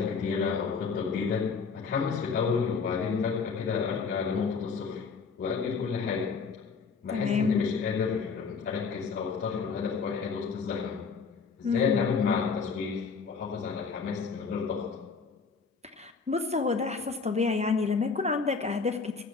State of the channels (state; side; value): quieter; right; 5.2 dB